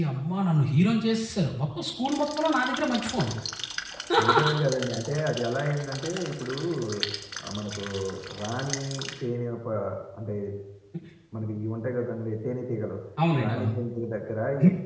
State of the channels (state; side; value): identical; both; correlation 1.00